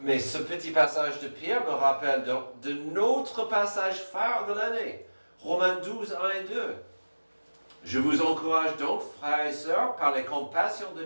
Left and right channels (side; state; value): both; inverted; correlation -1.00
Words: mais ce petit passage de Pierre me rappelle de notre passage phare de l'année, Romains 12, 1 et 2. Je vous encourage donc, frères et sœurs, par les compassions de